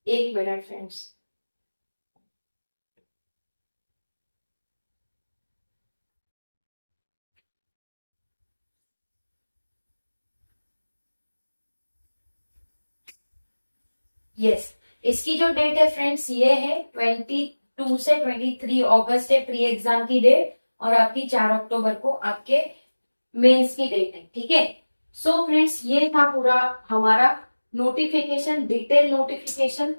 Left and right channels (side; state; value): both; inverted; correlation -1.00